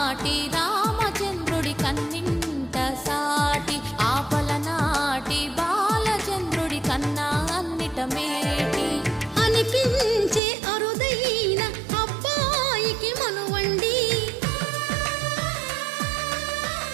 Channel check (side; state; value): left; drops out; at 10.4 s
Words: రామచంద్రుడి కన్నింత సాటి, ఆపలనాటి బాలచంద్రుడి కన్నా అన్నిట మేటి. అనిపించే అరుదైన అబ్బాయికి మనువండి,